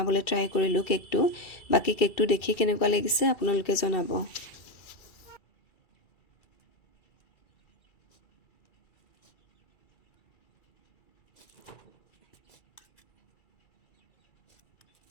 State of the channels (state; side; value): late; right; 2.3 ms